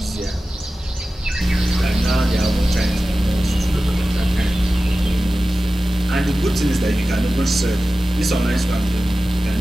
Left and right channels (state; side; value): normal; both; correlation 0.95